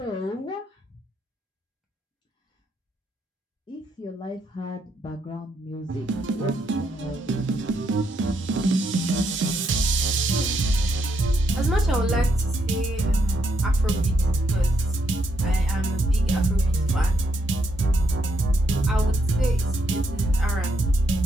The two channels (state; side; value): normal; both; correlation 0.77